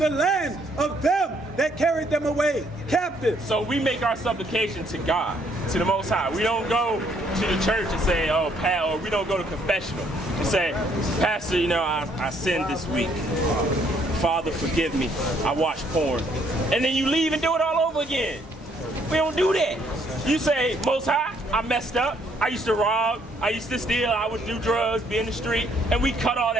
land of them that carried them away captive. So we make our supplication to God, to the Most High. We don't go to the church and say, oh, or we don't go to confessional and say, Pastor, you know, I sinned this week. Father, forgive me. I watched porn. And then you leave and do it all over again. We don't do that. You say, Most High, I messed up. I used to rob. I used to steal. I would do drugs, be in the street. And we cut all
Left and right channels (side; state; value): both; normal; correlation 0.67